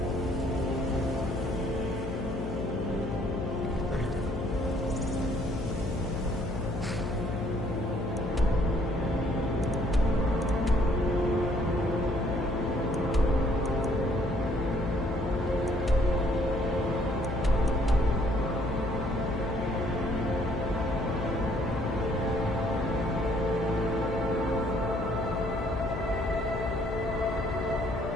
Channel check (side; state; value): left; noise; hum, 4 dB below the sound